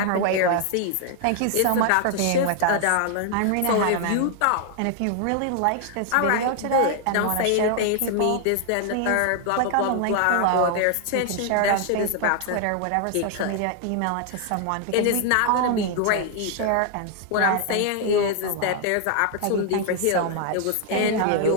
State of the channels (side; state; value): both; different; correlation 0.00